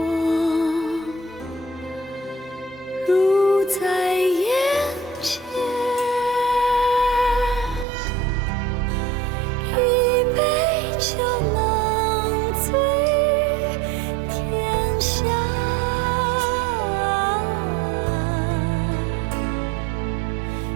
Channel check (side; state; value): left; drops out; at 7.9 s